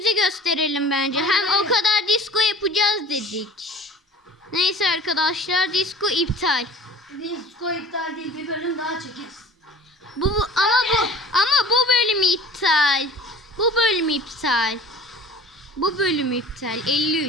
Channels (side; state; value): both; normal; correlation 0.44